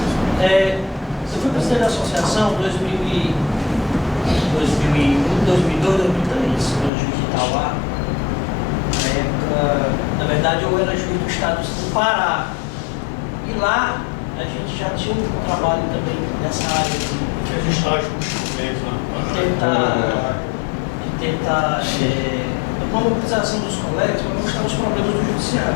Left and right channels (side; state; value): right; drops out; at 6.9 s